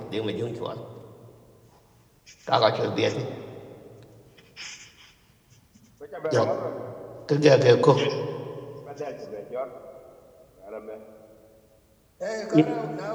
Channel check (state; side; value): identical; both; correlation 1.00